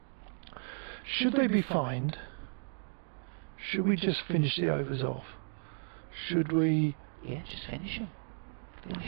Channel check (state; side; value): silent; left; 55 dB below the other